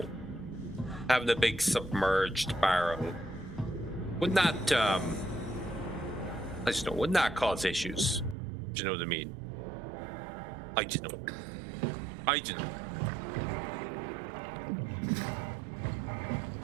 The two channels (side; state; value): left; drops out; at 8.3 s